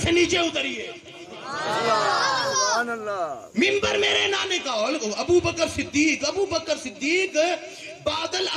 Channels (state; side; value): identical; both; correlation 1.00